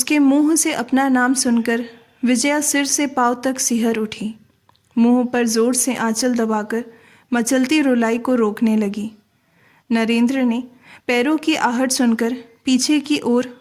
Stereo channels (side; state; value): both; identical; correlation 1.00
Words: मुंह से अपना नाम सुनकर विजया सिर से पांव तक सिहर उठी। मुंह पर जोर से आंचल दबाकर मचलती रुलाई को रोकने लगी। नरेंद्र ने पैरों की आहट सुनकर पीछे की ओर